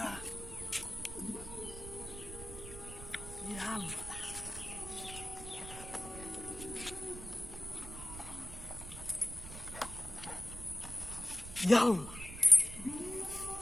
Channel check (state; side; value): noise; right; rumble, 11 dB below the sound